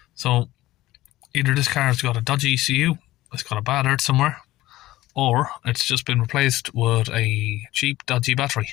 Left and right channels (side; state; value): right; quieter; 16.6 dB